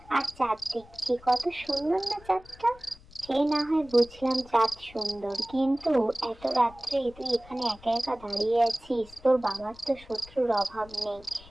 আর চাঁদ দেখছি। কত সুন্দর না চাঁদটা! সে না হয় বুঝলাম চাঁদ সুন্দর, কিন্তু এত রাত্রে তুই এখানে একা একা দাঁড়িয়ে আছিস, তোর বাবার তো শত্রুর অভাব নেই।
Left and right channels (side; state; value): left; noise; rumble, 22 dB below the sound